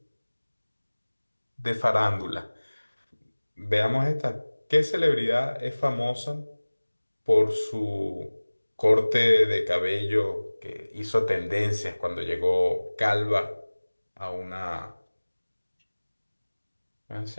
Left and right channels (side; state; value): both; inverted; correlation -1.00